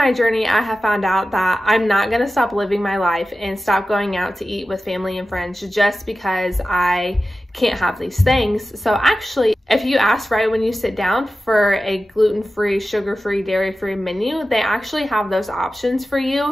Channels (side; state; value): both; normal; correlation 0.94